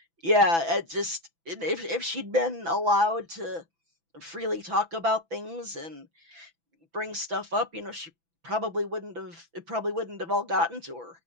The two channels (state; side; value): late; left; 6.0 ms